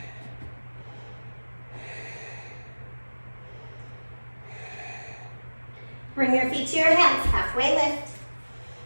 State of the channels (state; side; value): inverted; both; correlation -1.00